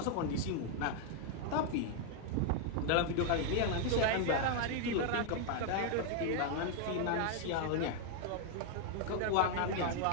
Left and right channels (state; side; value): different; both; correlation 0.00